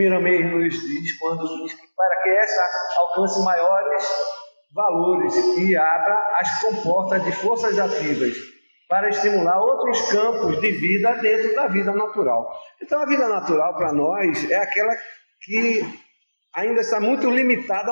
nos diz quando diz que para que essa alcance maiores valores e abra as comportas de forças ativas para estimular outros campos de vida dentro da vida natural. Então, a vida natural para nós é aquela que ainda está muito limitada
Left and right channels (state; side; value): inverted; both; correlation -1.00